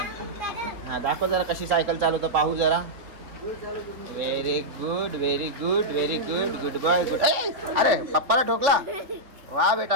हां, दाखव जरा कशी सायकल चालवतो, पाहू जरा. Very good, very good, very good, good boy, good. अरे पप्पाला ठोकला. वा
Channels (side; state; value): left; late; 3.7 ms